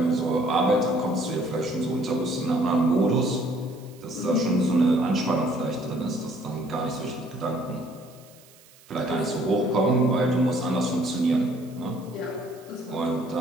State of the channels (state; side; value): noise; right; hiss, 26 dB below the sound